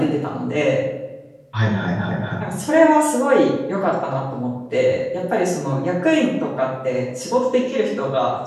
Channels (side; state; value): both; identical; correlation 1.00